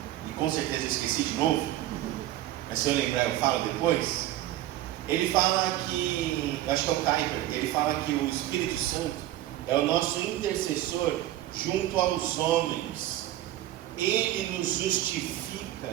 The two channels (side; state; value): left; quieter; 14.2 dB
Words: e com certeza eu esqueci de novo, mas se eu lembrar eu falo depois. Ele fala que, acho que é o Kuyper, ele fala que o Espírito Santo é o nosso intercessor junto aos homens. Ele nos